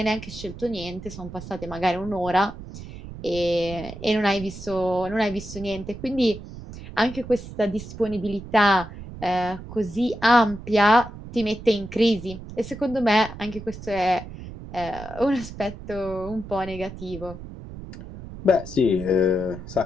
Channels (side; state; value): right; noise; rumble, 13 dB below the sound